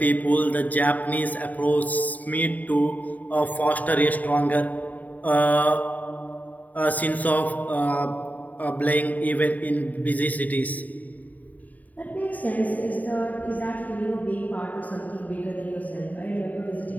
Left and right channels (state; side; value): late; right; 0.076 ms